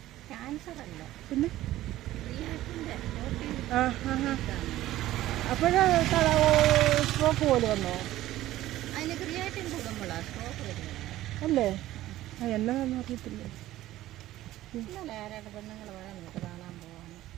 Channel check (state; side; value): quieter; left; 15.0 dB